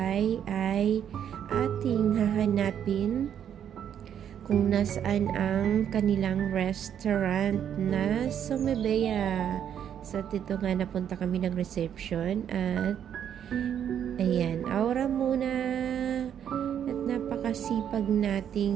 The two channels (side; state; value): left; quieter; 9.2 dB